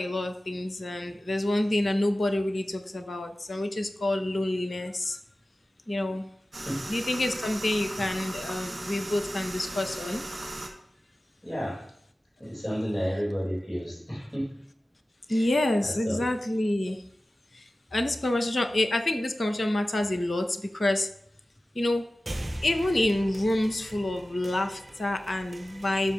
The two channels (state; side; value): normal; both; correlation 0.96